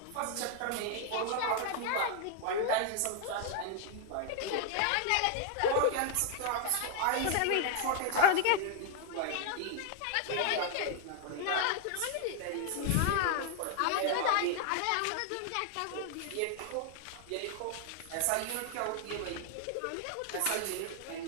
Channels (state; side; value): different; both; correlation 0.00